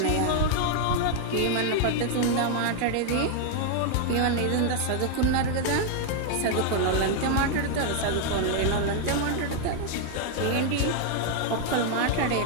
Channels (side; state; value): both; different; correlation 0.00